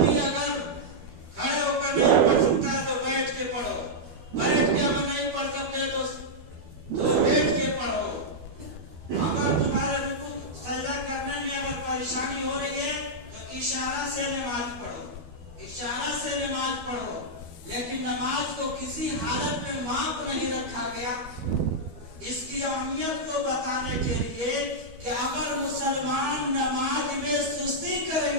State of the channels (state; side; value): late; left; 12 ms